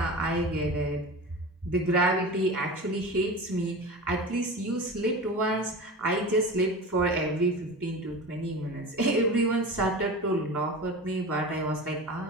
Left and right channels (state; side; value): normal; both; correlation 0.31